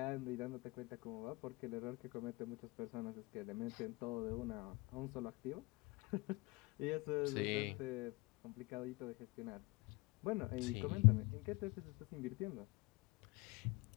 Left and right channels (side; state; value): right; quieter; 25.2 dB